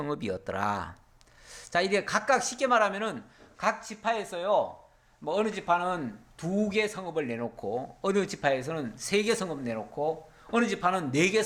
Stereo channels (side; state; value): both; identical; correlation 1.00